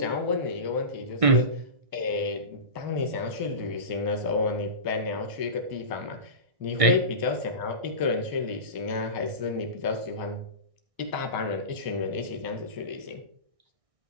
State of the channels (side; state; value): left; late; 1.6 ms